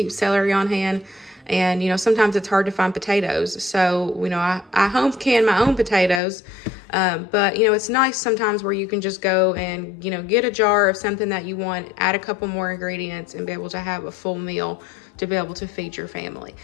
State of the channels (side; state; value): right; drops out; at 6.2 s